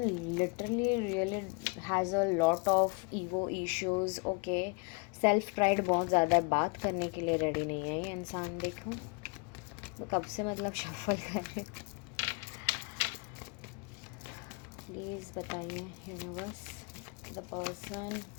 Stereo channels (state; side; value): quieter; right; 31.3 dB